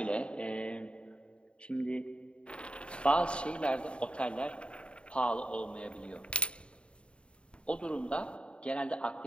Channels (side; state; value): right; late; 0.056 ms